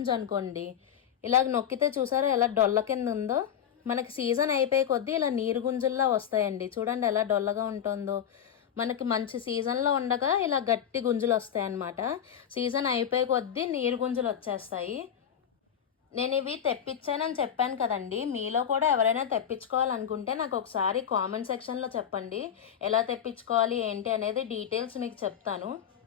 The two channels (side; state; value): right; quieter; 8.9 dB